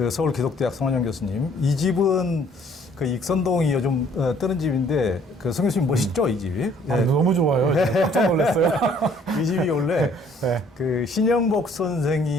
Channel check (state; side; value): normal; both; correlation 0.60